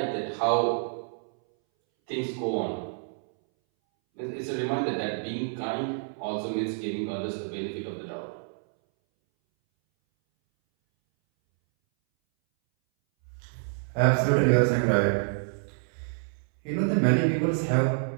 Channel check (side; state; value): left; silent; 60 dB below the other